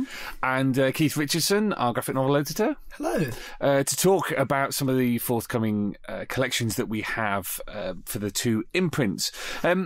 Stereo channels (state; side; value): identical; both; correlation 1.00